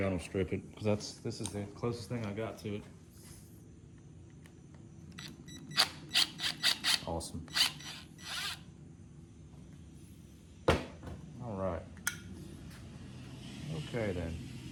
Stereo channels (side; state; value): both; identical; correlation 1.00